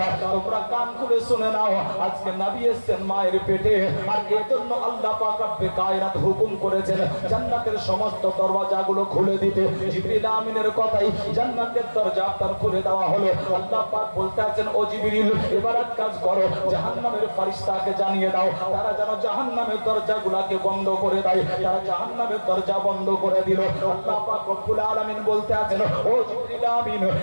তোমরা কান খুলে শুনে নাও, আজকে নবী এসেছেন মায়ের পেটে, আর এজন্য আল্লাহ পাক রব্বে কায়নাত হুকুম করেছেন জান্নাতের সমস্ত দরওয়াজাগুলো খুলে দিতে। জিবরিল আমিনের কথাই জান্নাতের দরজা আপনার খুলে দেওয়া হলো। আল্লাহ পাক বলতে আছেন, ও জিবরিল এবার এক কাজ করো, জাহান্নামের ফেরেশতাকে জানিয়ে দাও, তারা যেন জাহান্নামের দরজাগুলোকে বন্ধ করে দেয়। তারা জাহান্নামের দরজা বন্ধ করে দিল। আল্লাহ পাক রব্বুল আলামিন বলতে আছেন, ও জিবরিল আমিন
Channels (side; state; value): both; inverted; correlation -1.00